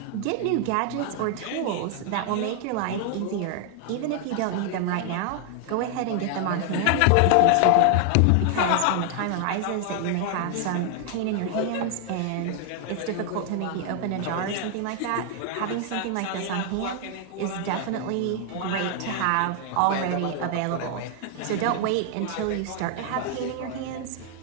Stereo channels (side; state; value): both; different; correlation 0.00